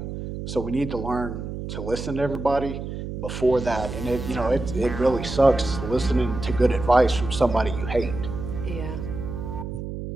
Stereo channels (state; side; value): noise; right; hum, 7 dB below the sound